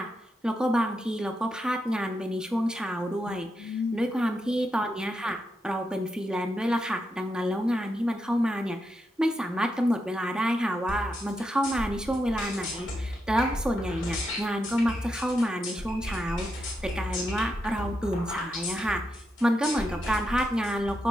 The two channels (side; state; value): both; normal; correlation 0.85